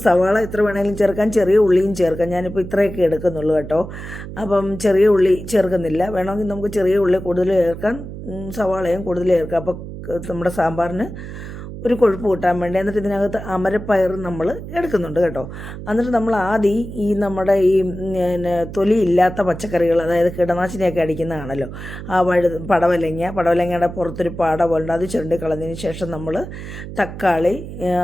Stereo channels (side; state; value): right; noise; hum, 10 dB below the sound